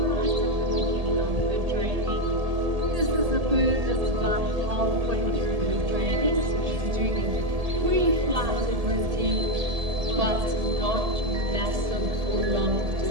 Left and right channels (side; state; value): left; late; 1.7 ms